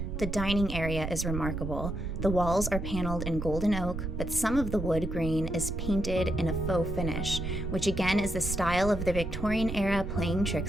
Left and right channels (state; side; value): noise; right; rumble, 5 dB below the sound